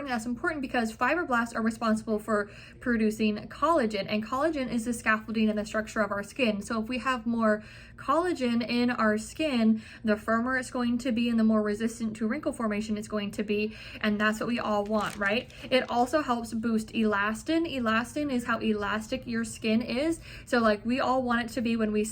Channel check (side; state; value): both; identical; correlation 1.00